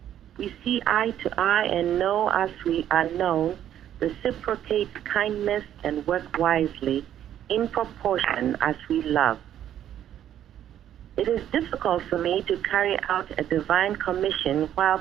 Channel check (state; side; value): quieter; left; 10.8 dB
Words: We see eye to eye and know as we are known, reciprocates kindness and work wisely in proportion as we love. It is difficult for me to carry out a divine commission while